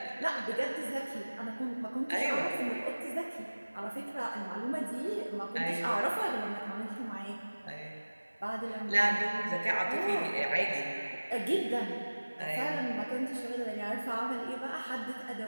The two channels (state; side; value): inverted; both; correlation -1.00